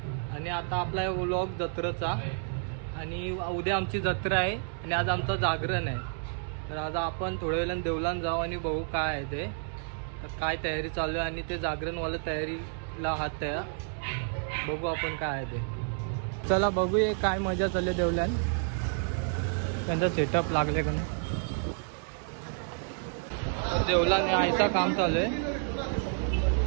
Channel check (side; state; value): left; silent; 58 dB below the other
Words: आणि आता आपला व्लॉग जत्रेचा, आणि उद्या आमची जत्रा आहे आणि आज आमचं जागरण आहे। तर आज आपण थोड्या वेळाने देवलान जाऊ आणि बघू काय आहे ते, तर काय तयारी चालू आहे आणि ते जागरणवाला तयारीला हात तयार बघू आपण काय आहे ते। चला बघूया काय मजा चालली देवलान, त्यांचा सेटअप लागले का नाही। देवलाने आयचा काम चालू आहे।